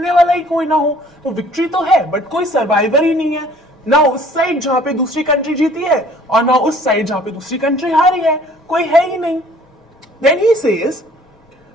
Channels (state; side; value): normal; both; correlation 0.54